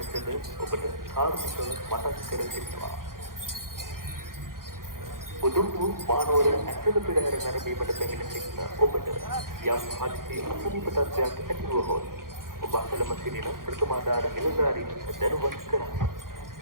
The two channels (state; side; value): late; left; 0.91 ms